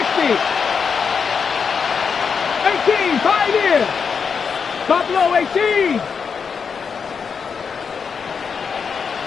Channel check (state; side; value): quieter; right; 6.1 dB